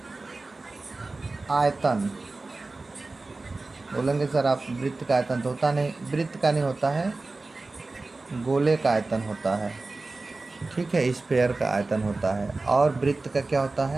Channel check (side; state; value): left; quieter; 3.4 dB